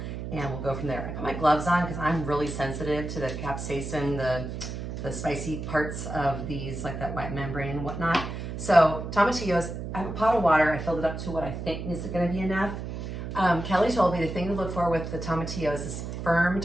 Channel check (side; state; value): right; noise; hum, 6 dB below the sound